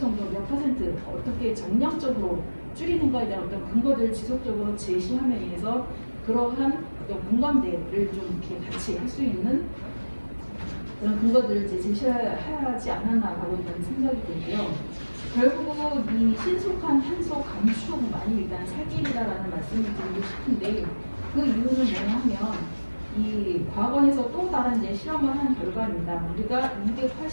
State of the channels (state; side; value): inverted; both; correlation -1.00